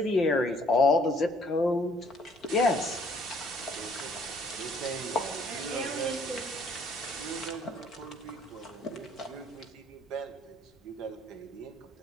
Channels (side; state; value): both; normal; correlation 0.62